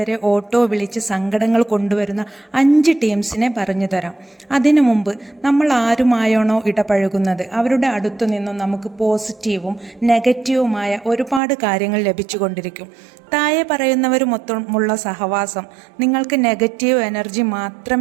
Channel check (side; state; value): left; drops out; at 11.4 s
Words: ഓട്ടോ വിളിച്ച് സങ്കടങ്ങൾ കൊണ്ടുവരുന്ന 5 ടീംസിനെ പറഞ്ഞു തരാം. അതിനു മുമ്പ് നമ്മൾ ആരുമായാണോ ഇടപഴകുന്നത് അവരുടെ അടുത്തു നിന്നും നമുക്ക് പോസിറ്റീവും നെഗറ്റീവുമായ ഒരുപാട് കാര്യങ്ങൾ ലഭിച്ചുകൊണ്ടിരിക്കും. താഴെ പറയുന്നവരുമൊത്തമുള്ള സഹവാസം നിങ്ങൾക്ക് നെഗറ്റീവ് എനർജി